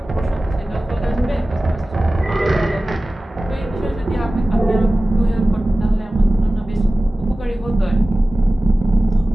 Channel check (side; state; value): both; normal; correlation 0.96